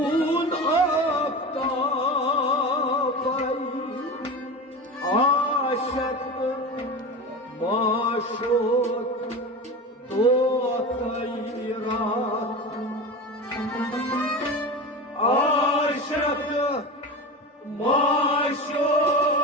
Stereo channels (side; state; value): both; normal; correlation 0.27